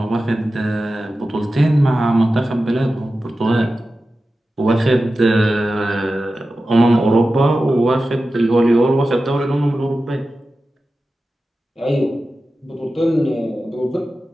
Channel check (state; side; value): normal; both; correlation 0.94